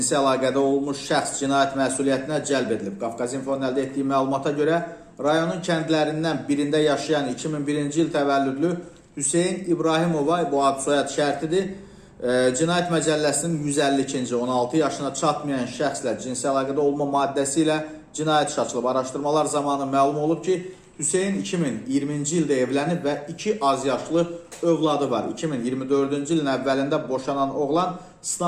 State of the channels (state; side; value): identical; both; correlation 1.00